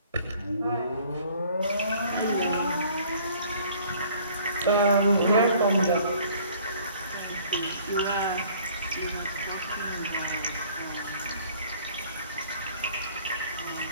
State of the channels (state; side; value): inverted; both; correlation -0.55